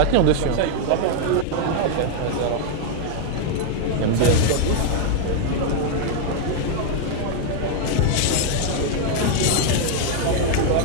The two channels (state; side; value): different; both; correlation 0.00